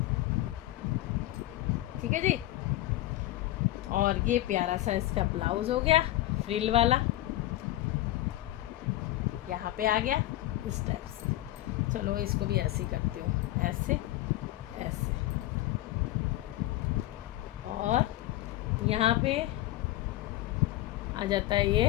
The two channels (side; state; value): right; quieter; 15.6 dB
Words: ठीक है जी। और ये प्यारा सा इसका ब्लाउज़ हो गया फ्रिल वाला, यहाँ पे आ गया इस टाइप से। चलो इसको भी ऐसे ही करती हूँ, ऐसे ऐसे। और यहाँ पे आ जाता है